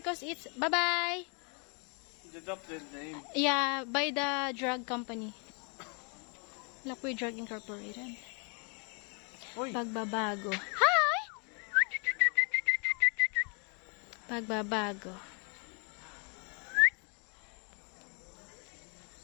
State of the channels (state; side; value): quieter; right; 36.3 dB